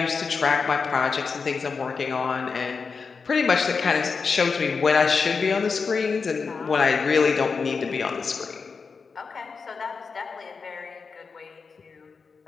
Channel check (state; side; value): quieter; right; 5.1 dB